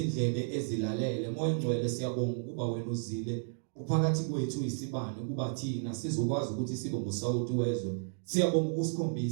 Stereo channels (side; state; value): left; silent; digital silence